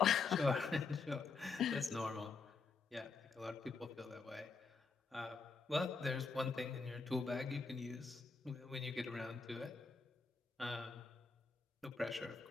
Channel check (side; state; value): right; quieter; 4.6 dB